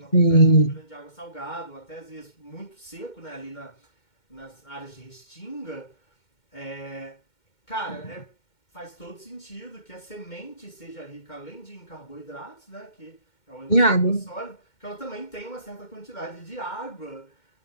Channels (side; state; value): right; late; 2.2 ms